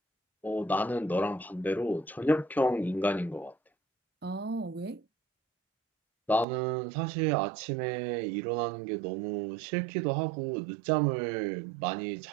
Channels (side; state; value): left; drops out; at 6.5 s